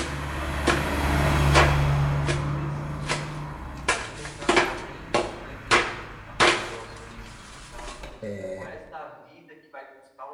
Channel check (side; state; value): both; identical; correlation 1.00